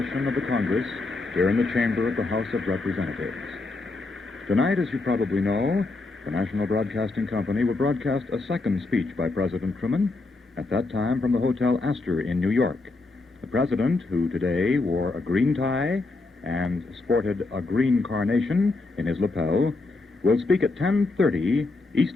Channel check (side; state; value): right; quieter; 3.4 dB